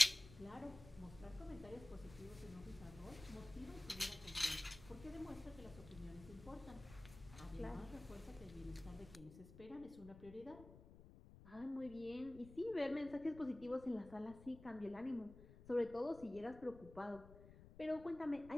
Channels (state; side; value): noise; left; rumble, 17 dB below the sound